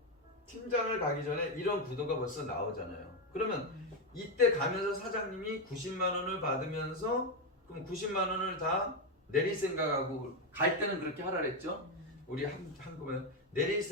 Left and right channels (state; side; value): normal; both; correlation 0.08